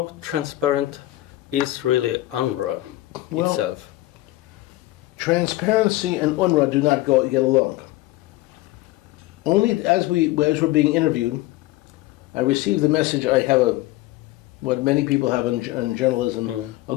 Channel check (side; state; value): right; quieter; 17.6 dB